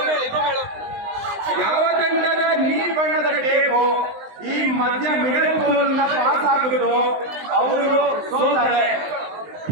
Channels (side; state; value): left; late; 20 ms